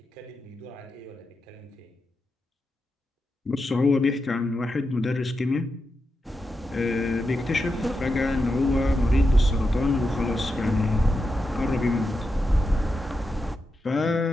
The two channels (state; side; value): normal; both; correlation 0.88